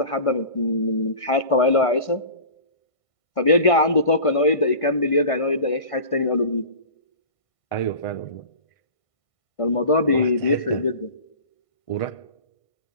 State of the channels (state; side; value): late; right; 1.5 ms